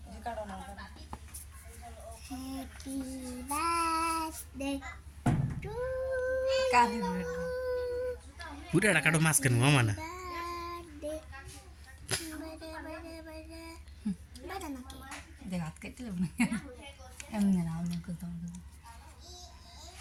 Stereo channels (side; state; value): both; identical; correlation 1.00